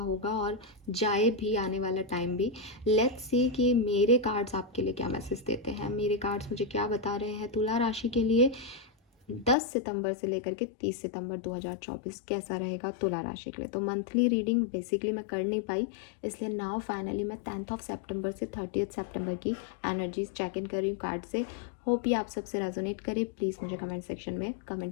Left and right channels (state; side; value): drops out; right; at 9.6 s